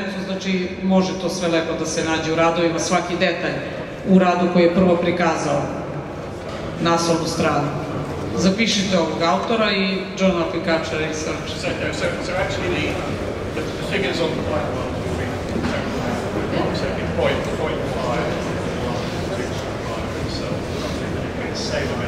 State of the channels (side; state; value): both; identical; correlation 1.00